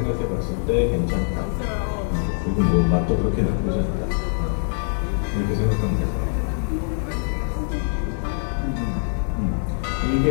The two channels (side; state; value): right; silent; digital silence